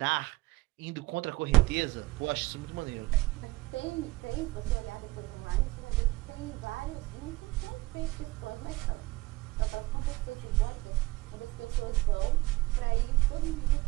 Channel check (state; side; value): quieter; left; 21.1 dB